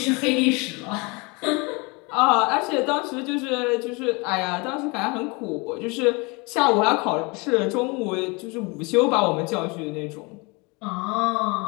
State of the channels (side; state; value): right; quieter; 28.2 dB